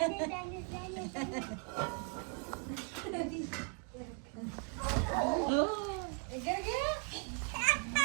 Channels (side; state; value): left; quieter; 35.5 dB